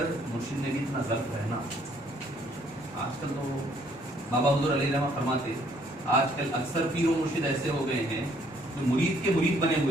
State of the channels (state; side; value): normal; both; correlation 0.64